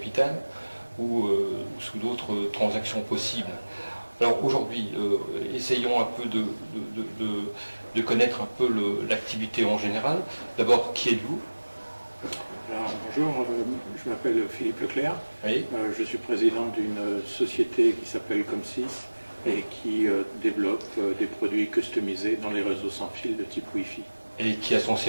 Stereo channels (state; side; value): inverted; both; correlation -1.00